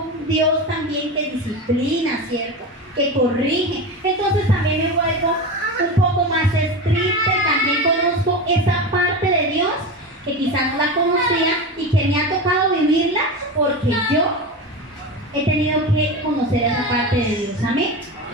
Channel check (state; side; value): normal; both; correlation 0.23